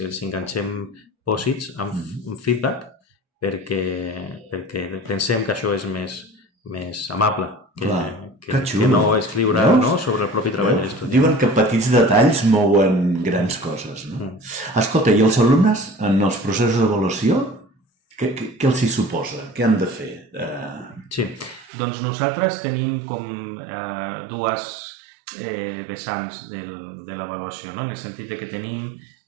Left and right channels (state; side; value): drops out; left; at 21.7 s